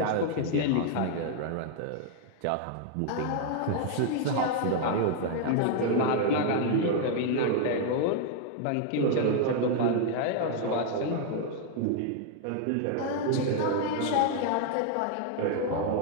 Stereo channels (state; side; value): different; both; correlation 0.00